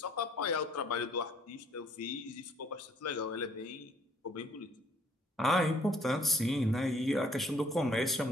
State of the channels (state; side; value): normal; both; correlation 0.61